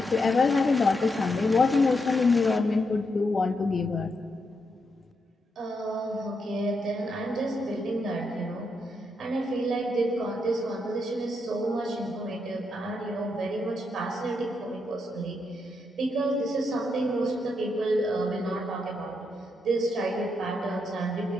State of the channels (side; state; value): both; normal; correlation 0.81